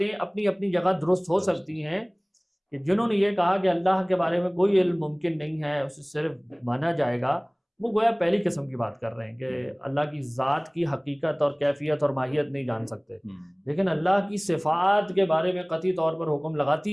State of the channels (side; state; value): both; identical; correlation 1.00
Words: اپنی اپنی جگہ درست ہو سکتی ہیں، کہ جنہوں نے یہ کہا کہ اللہ کے بارے میں کوئی علم ممکن نہیں ہے، اسے صرف مانا جائے گا، وہ گویا پہلی قسم کی بات کر رہے ہیں کہ اللہ کی ذات کی حقیقت اور کیفیت اور ماہیت نہیں جان سکتے، لیکن اللہ کی صفات کے بارے میں قطعی طور پر حکم